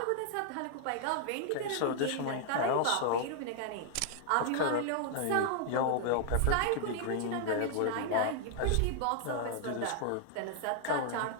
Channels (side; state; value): both; different; correlation 0.00